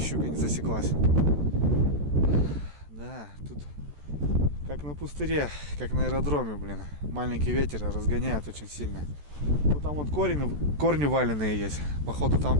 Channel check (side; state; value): left; late; 14 ms